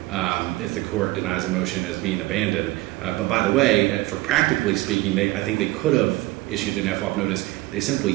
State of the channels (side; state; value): left; quieter; 19.1 dB